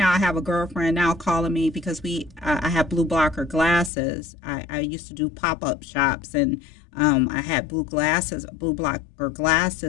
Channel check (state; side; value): drops out; right; at 3.9 s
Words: I have a girlfriend now calling me because I have blue blocker glasses. I used to do pop-up shops, and I had blue blocker